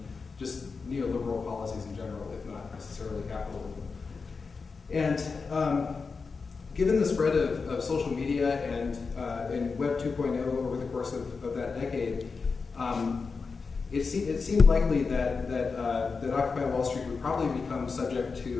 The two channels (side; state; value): right; quieter; 4.8 dB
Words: just neoliberal policies in general, if not necessarily capitalism. And given the spread of social media and Web 2.0 over the course of that decade, it seemed likely that Occupy Wall Street would probably become subject